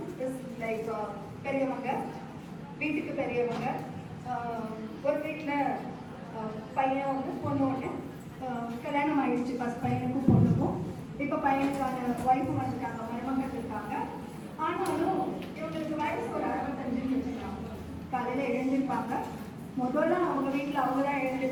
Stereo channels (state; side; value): identical; both; correlation 1.00